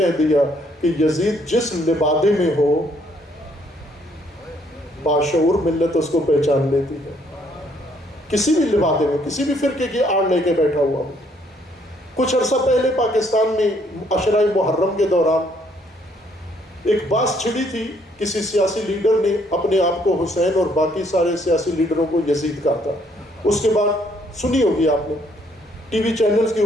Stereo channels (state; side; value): normal; both; correlation 0.67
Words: دیا کہ یزید جس لبادے میں ہو، باشعور ملت اس کو پہچان لیتی ہے. کسی بھی لبادے میں، کسی بھی فرقے کی آڑ لے کے بیٹھا ہوا ہو. کچھ عرصہ پہلے پاکستان میں عشرہ محرم کے دوران ایک باس چھڑی تھی. کسی سیاسی لیڈر نے اپنے آپ کو حسین اور باقی سارے سیاسی لیڈروں کو یزید کہا تھا. اس کے بعد سنی ہوگی آپ نے، ٹی وی چینلز کے